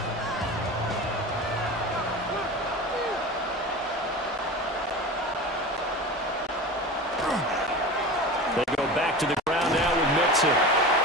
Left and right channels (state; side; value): normal; both; correlation 0.31